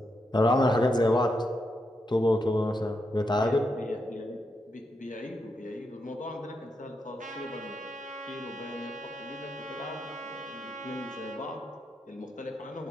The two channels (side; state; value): both; normal; correlation 0.83